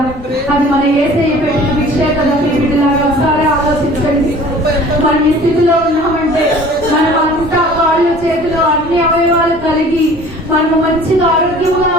అది మన యేసయ్య పెట్టిన భిక్షే కదా. మీ బిడ్డలాగా ఒకసారి ఆలోచించండి. మనం ఈ స్థితిలో ఉన్నామంటే మనం అంతా కాళ్ళు చేతులు అన్ని అవయవాలు కలిగి మనము మంచిగా ఆరోగ్యంగా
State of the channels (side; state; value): both; normal; correlation 0.47